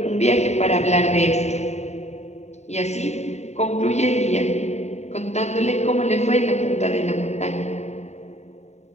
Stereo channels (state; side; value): late; right; 0.32 ms